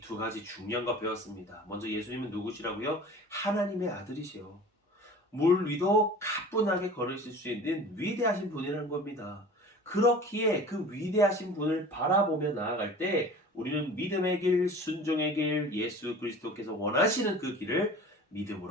두 가지 중요한 거 배웠습니다. 먼저 예수님은 누구시라고요? 하나님의 아들이시요. 물 위도 가뿐하게 걸으실 수 있는 위대하신 분이라는 겁니다. 그렇기에 그 위대하신 분을 바라보며 나아갈 때 우리는 믿음의 길, 순종의 길, 예수 그리스도께서 원하시는 그 길을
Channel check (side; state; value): both; normal; correlation 0.41